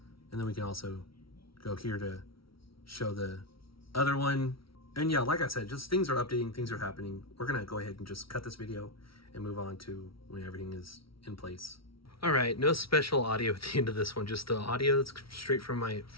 And then we can also go here to show the other one. And yeah, like I said, just things are updating, things are happening. We're gonna go ahead and just cut this video and move on to when everything is in place. All right, no special audio at the end of this one, just the audio that's straight from my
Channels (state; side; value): late; right; 0.75 ms